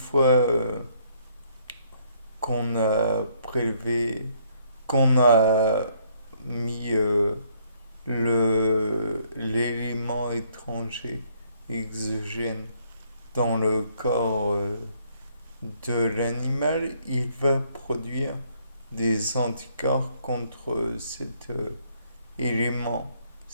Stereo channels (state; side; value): inverted; both; correlation -0.67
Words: qu'on a prélevé, qu'on a mis l'élément étranger, exogène, dans le corps de l'animal, il va produire des anticorps contre cet élément,